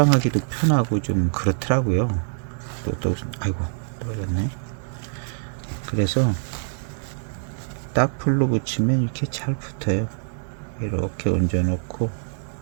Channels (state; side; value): silent; left; digital silence